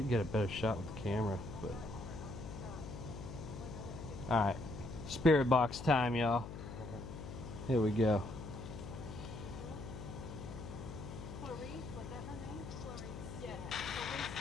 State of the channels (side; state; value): left; noise; hum, 9 dB below the sound